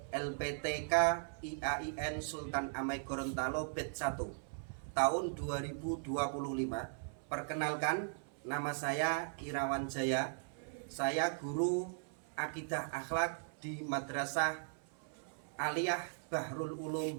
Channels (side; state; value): left; silent; 52 dB below the other